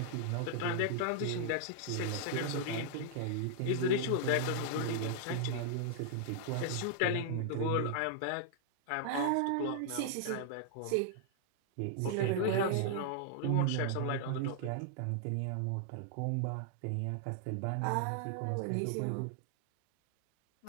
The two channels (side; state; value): both; different; correlation -0.01